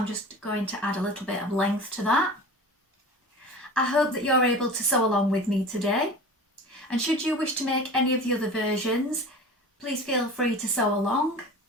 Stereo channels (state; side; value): normal; both; correlation 0.36